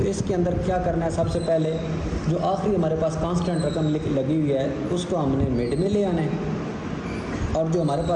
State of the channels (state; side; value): identical; both; correlation 1.00